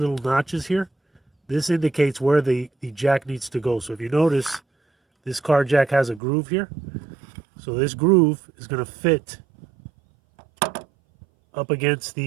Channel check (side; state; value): left; drops out; at 6.2 s